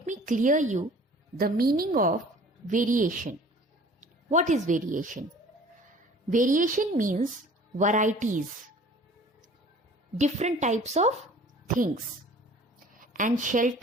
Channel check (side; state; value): both; normal; correlation 0.48